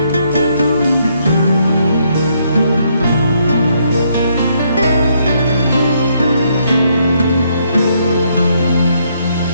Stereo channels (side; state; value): both; inverted; correlation -0.72